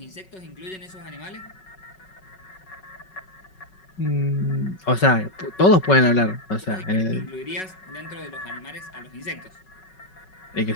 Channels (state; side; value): late; right; 5.3 ms